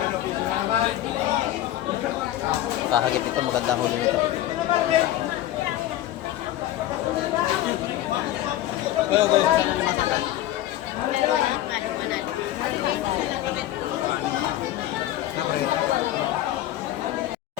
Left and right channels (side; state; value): right; quieter; 13.9 dB